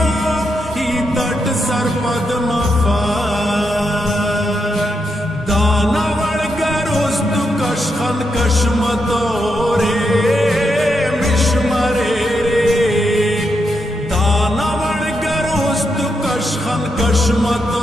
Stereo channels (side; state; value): both; normal; correlation 0.83